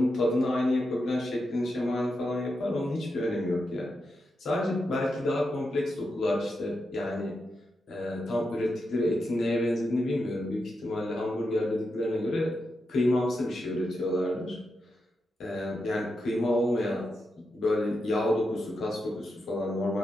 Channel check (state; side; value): normal; both; correlation 0.87